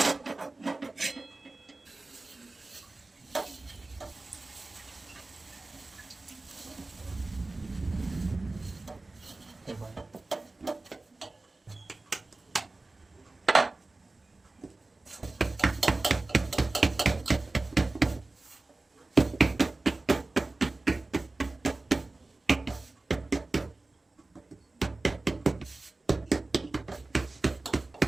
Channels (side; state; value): left; quieter; 3.2 dB